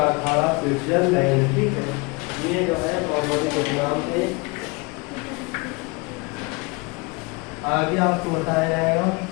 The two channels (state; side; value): quieter; right; 28.0 dB